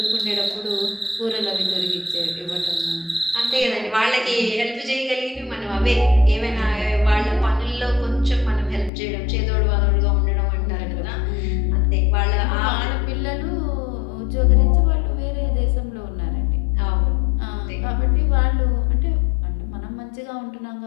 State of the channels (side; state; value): right; drops out; at 8.9 s